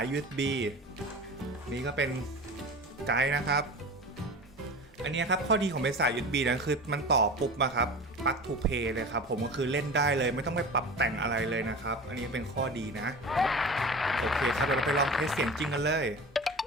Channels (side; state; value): both; normal; correlation 0.34